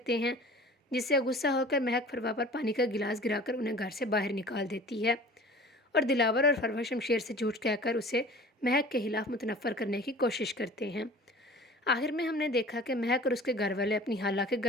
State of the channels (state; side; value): normal; both; correlation 0.43